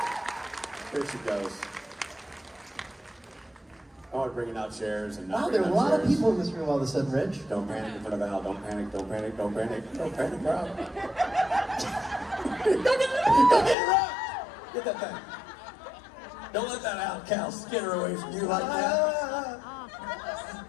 out chairs. Here she goes. Oh, bringing out chairs and wow, there are a lot of people in this room all of a sudden, Rich. Don't panic in front of Al. Don't panic. Don't panic. Don't panic. Don't panic, Rob. Go get it, Rob. Get that thing. Don't let that out, Cal, skitter away from you like that.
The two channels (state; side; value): drops out; right; at 13.8 s